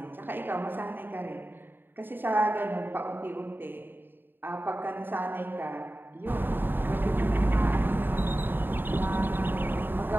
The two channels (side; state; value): left; late; 0.095 ms